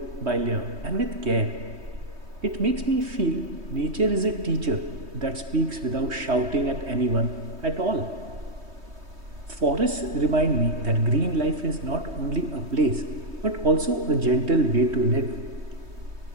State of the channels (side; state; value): left; late; 3.2 ms